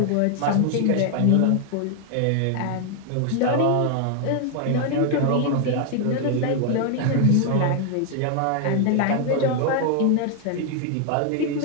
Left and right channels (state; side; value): different; both; correlation 0.00